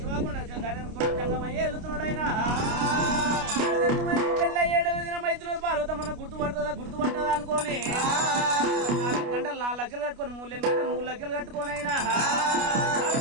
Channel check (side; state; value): left; late; 29 ms